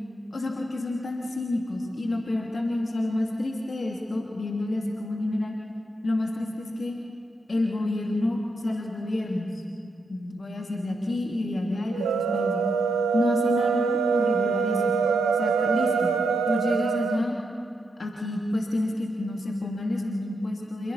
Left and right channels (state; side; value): normal; both; correlation 0.82